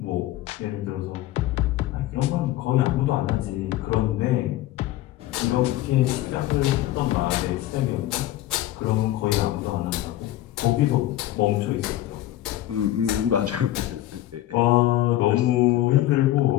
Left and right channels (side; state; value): right; quieter; 14.7 dB